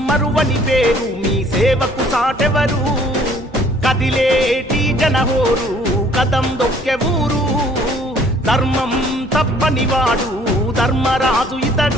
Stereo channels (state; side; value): normal; both; correlation 0.58